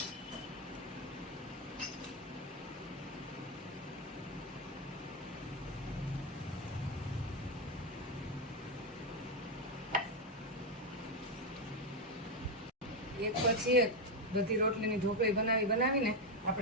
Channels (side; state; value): both; normal; correlation 0.06